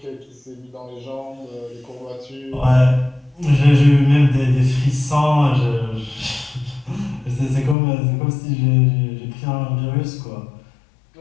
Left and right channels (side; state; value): right; drops out; at 7.8 s